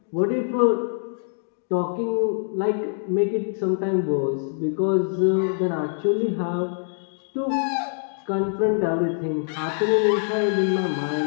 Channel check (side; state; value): right; silent; digital silence